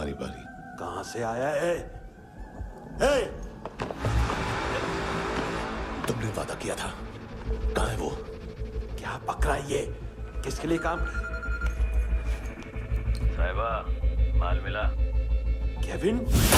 बारी। कहां से आया है? हे! तुमने वादा किया था, कहां है वो? क्या पकड़ा ये? किसके लिए काम? साहिबा, माल मिला? केविन?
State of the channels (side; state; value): both; identical; correlation 1.00